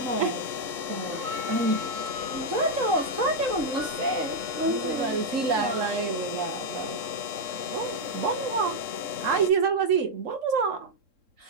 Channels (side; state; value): left; late; 3.7 ms